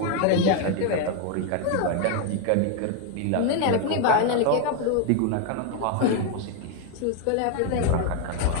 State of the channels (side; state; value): both; different; correlation 0.01